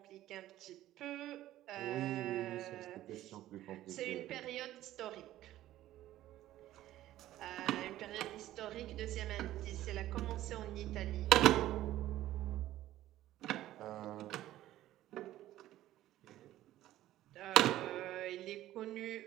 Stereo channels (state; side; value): quieter; left; 14.2 dB